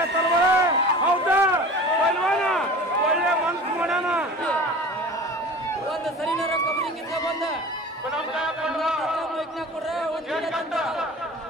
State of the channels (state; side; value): normal; both; correlation 0.39